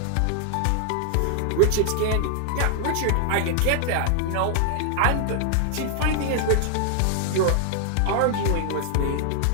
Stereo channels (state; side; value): different; both; correlation 0.00